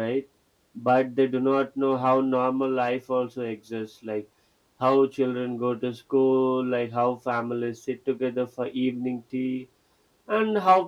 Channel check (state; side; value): identical; both; correlation 1.00